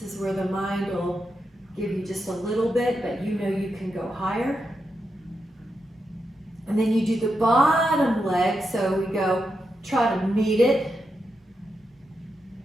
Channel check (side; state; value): both; normal; correlation 0.85